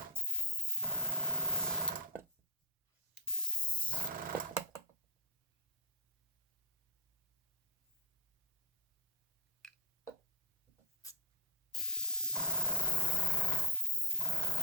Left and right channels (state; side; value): normal; both; correlation 0.06